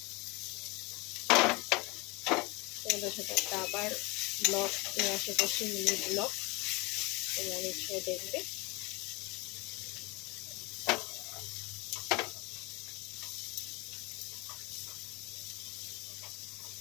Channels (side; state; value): right; quieter; 25.8 dB